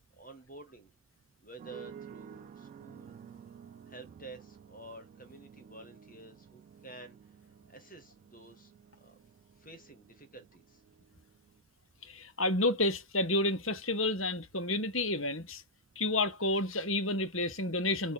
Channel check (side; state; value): both; normal; correlation -0.07